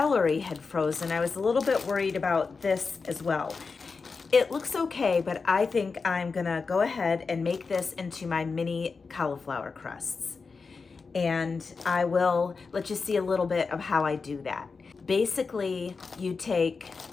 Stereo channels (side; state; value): right; quieter; 4.7 dB